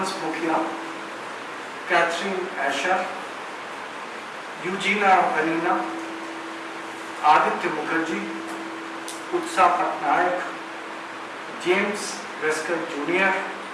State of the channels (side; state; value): both; identical; correlation 1.00